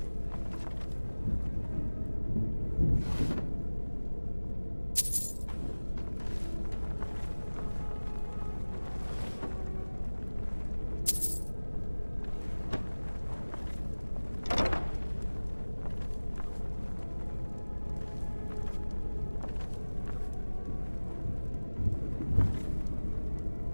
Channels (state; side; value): inverted; both; correlation -1.00